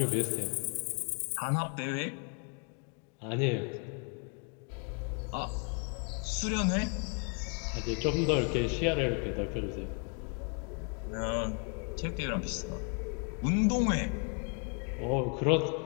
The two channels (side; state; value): right; quieter; 38.1 dB